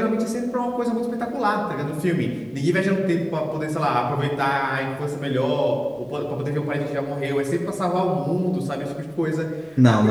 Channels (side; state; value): right; noise; hum, 29 dB below the sound